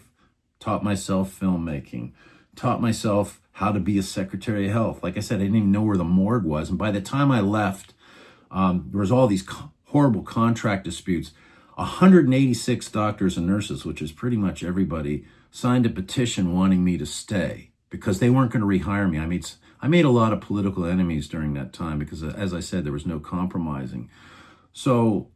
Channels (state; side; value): identical; both; correlation 1.00